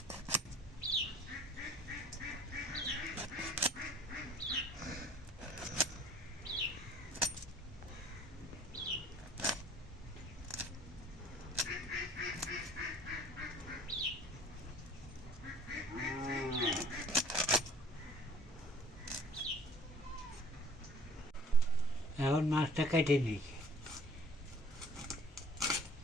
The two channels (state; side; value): normal; both; correlation 0.52